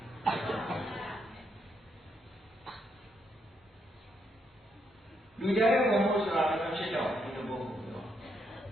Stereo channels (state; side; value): normal; both; correlation 0.77